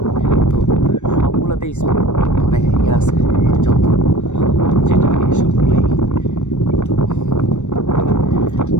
তো সবগুলোতে স্পিড মানে ইয়ে আছে, যত যেটা নিয়ে সবগুলোই। তো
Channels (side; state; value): right; late; 0.84 ms